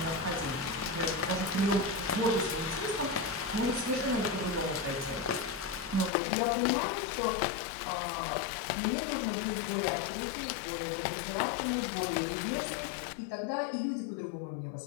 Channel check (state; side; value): drops out; right; at 6.1 s